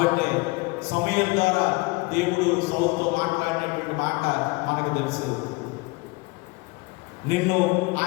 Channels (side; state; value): right; quieter; 24.7 dB